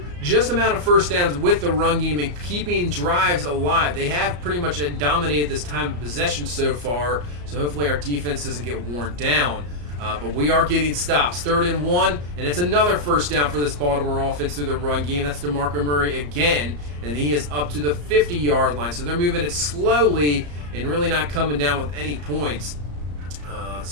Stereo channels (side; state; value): left; late; 34 ms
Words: just amount of first downs with the run game and keeping drives alive. They have pretty much dominated this time of possession so far, so hopefully our defense doesn't get worn down. But we are getting stops. 3rd and 1, and it's another first down for this Baltimore offense through the run game. That's DeMarco Murray again, and he is up to the 50-yard line. So they're moving it slowly and really not coming down with any points.